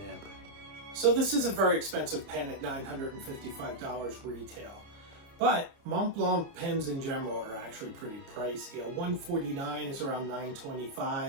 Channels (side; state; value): left; late; 30 ms